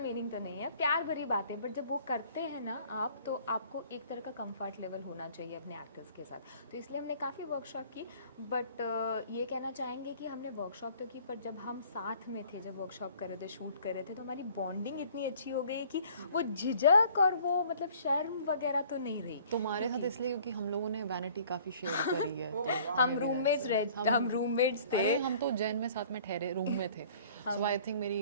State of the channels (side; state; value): both; inverted; correlation -0.53